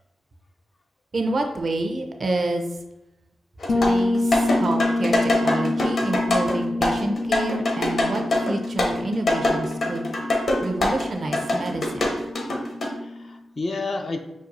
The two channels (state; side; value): normal; both; correlation 0.90